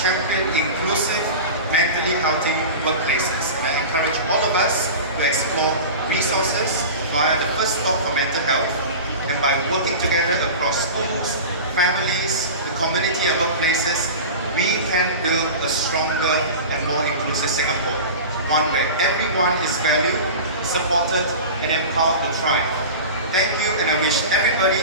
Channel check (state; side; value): inverted; both; correlation -0.31